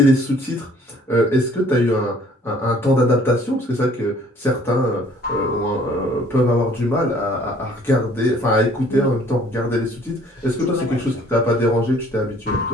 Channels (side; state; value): both; normal; correlation 0.57